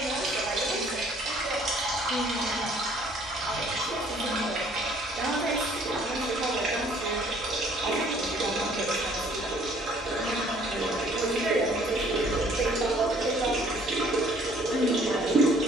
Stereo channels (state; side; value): normal; both; correlation 0.59